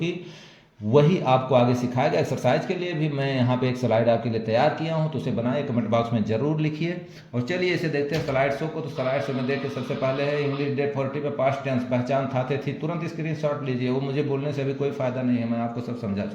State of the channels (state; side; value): identical; both; correlation 1.00